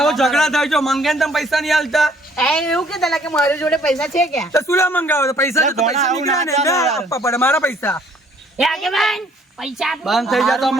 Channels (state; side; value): normal; both; correlation 0.61